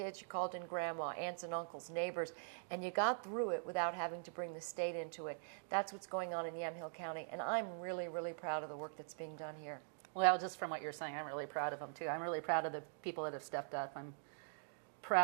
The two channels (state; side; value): silent; left; digital silence